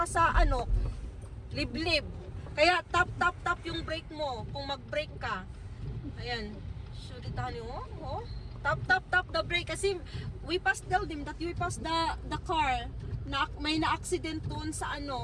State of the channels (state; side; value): identical; both; correlation 1.00